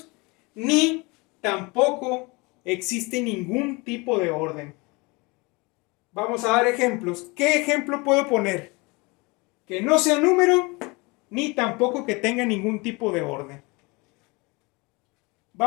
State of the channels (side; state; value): right; quieter; 26.3 dB